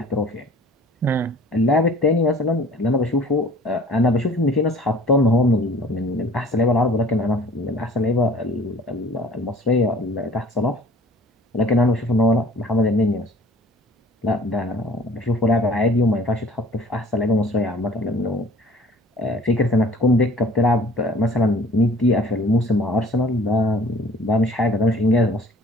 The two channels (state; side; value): normal; both; correlation 0.50